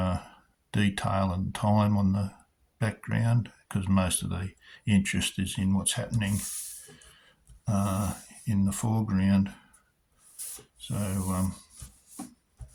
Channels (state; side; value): identical; both; correlation 1.00